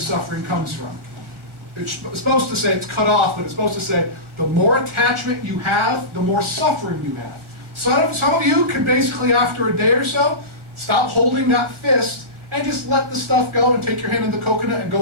comes from. It's supposed to say it's cut off, but it's supposed to say the more attachment you have, the more suffering you have. Some of you can basically, after a day or so, stop holding that fist and just let the stuff go and take your hand in the coconut and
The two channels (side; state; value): left; late; 1.4 ms